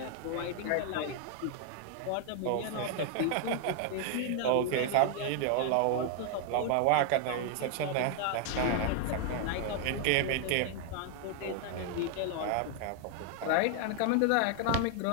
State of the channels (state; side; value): different; both; correlation 0.00